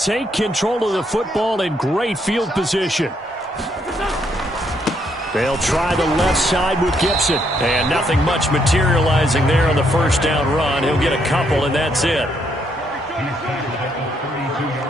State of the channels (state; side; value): normal; both; correlation 0.73